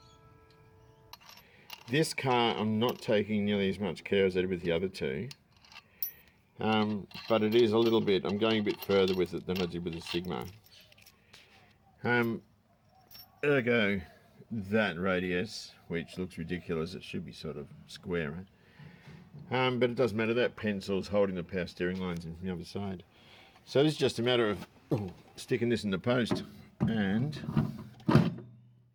This car, I'm not taking nearly as much care as I did with the other two. But it is a little bit, I'm going a bit further with it than I did with the Sigma. Ergo, that radius, which looks ridiculous, it should be sort of square. But it doesn't matter, that pencil's holding the power steering lines in from the other side. So this is just a matter of sticking this in the post and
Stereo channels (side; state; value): both; identical; correlation 1.00